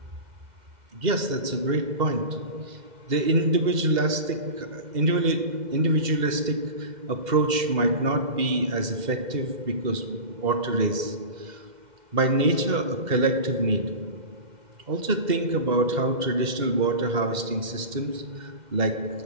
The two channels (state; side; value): late; left; 2.1 ms